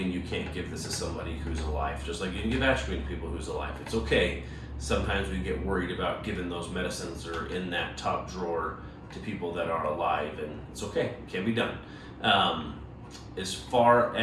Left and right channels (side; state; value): both; identical; correlation 1.00